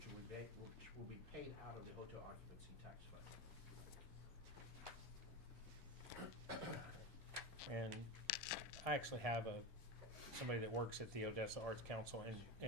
will be paid out of the hotel occupancy tax fund. And I actually have somebody that works at the Odessa Arts Council,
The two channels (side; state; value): both; normal; correlation 0.20